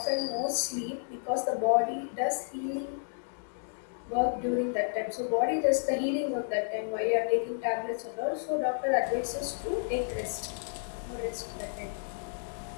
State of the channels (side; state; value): right; silent; digital silence